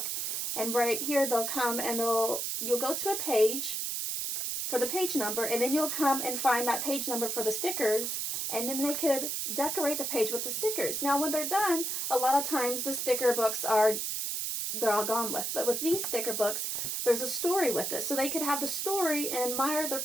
And right here they'll come and you'll go to a page for the page number, and then you'll come and find that page number for the stickers, and then they could decorate the page with the stickers. Now when they're done, a lot of times the sticker books they're all gone with. But with these sticker books, there's a story with it. So they could have the story and admire their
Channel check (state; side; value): noise; right; hiss, 1 dB below the sound